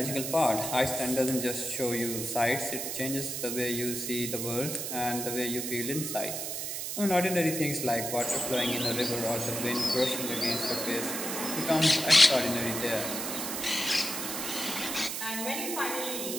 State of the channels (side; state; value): right; noise; hiss, 4 dB below the sound